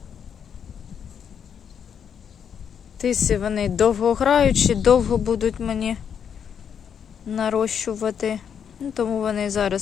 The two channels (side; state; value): right; quieter; 7.8 dB